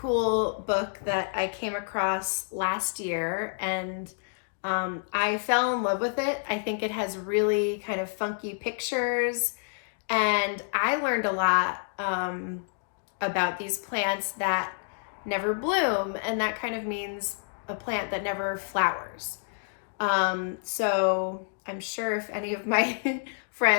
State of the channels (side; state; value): right; silent; digital silence